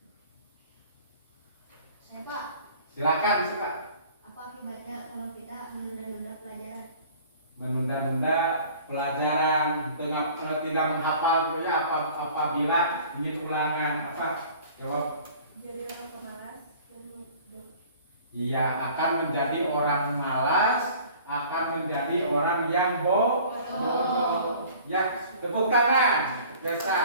Saya Pak, Silakan, Pak. apa akibatnya kalau kita menunda-nunda pelajaran? Menunda-nunda pelajaran, tidak menghafal gitu ya, apabila ingin ulangan apa? Jawab. Jadi orang pemalas dan mudah. Iya, akan menjadi orang malas, akan menjadi orang yang bodoh. Ya, tepuk tangan.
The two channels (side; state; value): both; inverted; correlation -0.48